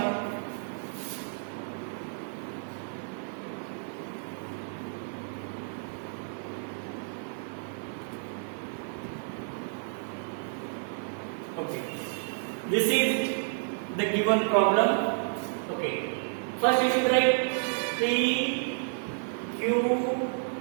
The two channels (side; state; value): left; silent; digital silence